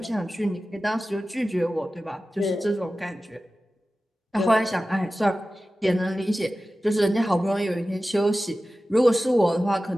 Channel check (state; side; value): normal; both; correlation 0.95